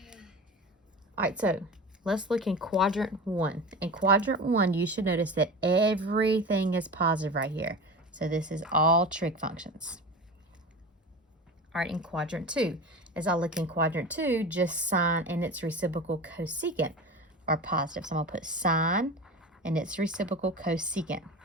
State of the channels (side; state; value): both; normal; correlation 0.31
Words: All right, so let's look in quadrant 1. In quadrant 1, you should notice that everything is positive right here. So this is all trig functions. All right, in quadrant 2, as I look in quadrant 2, just sine and its reciprocal cosecant are positive. So I'm going to put sine and its reciprocal cosecant